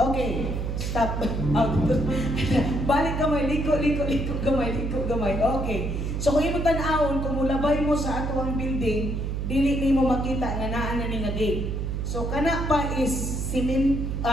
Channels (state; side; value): noise; right; hum, 2 dB below the sound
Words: stop. Balik gamay, liko gamay. Okay. So kung imo tan-awon, kung mulabay mo sa ato ang building, dili nimo makita nga naa na ni nga gate. So kana pa is